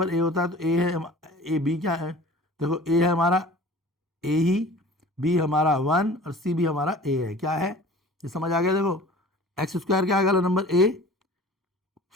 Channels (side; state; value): both; normal; correlation 0.43